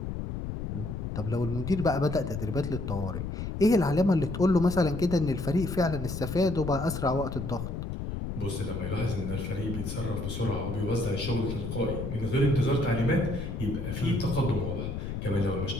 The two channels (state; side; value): noise; left; rumble, 5 dB below the sound